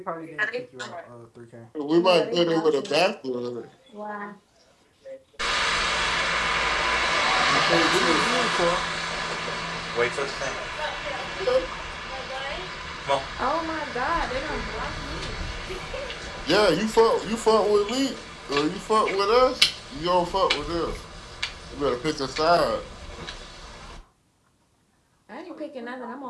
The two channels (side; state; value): both; identical; correlation 1.00